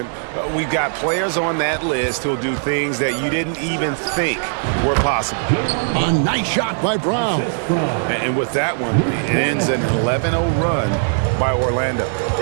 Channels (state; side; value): silent; left; digital silence